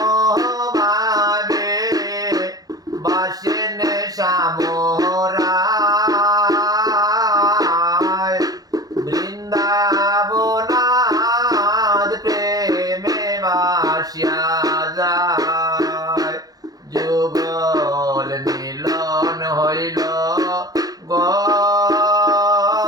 ভাবে বাসেন শ্যামরায় বৃন্দাবনাথ প্রেমে বাসিয়া যায় যুগল মিলন হইল গো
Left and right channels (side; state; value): left; late; 0.18 ms